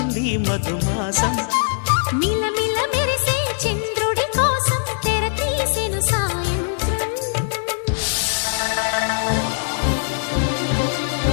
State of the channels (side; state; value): right; silent; digital silence